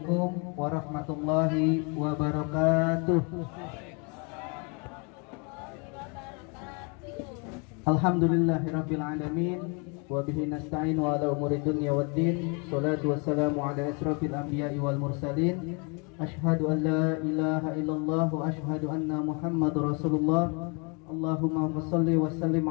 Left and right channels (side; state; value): right; quieter; 33.9 dB